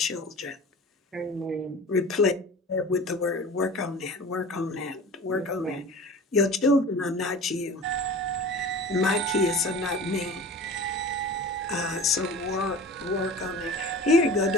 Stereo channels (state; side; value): normal; both; correlation 0.38